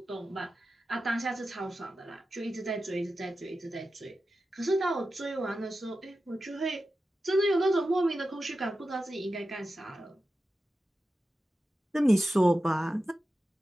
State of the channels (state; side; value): normal; both; correlation 0.92